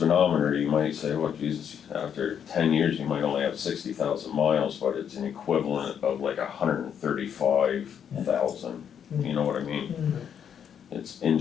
you might say, oh Jesus, after 10 years, you might only have 60,000 miles, but it's an equivalent of like 135,000. You know what I mean? It's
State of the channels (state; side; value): quieter; right; 8.3 dB